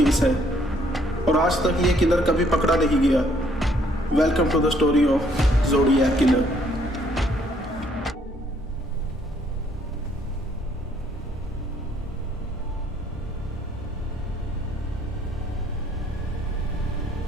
है और आज तक ये किलर कभी पकड़ा नहीं गया। Welcome to the story of zodiac killer.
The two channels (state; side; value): normal; both; correlation 0.66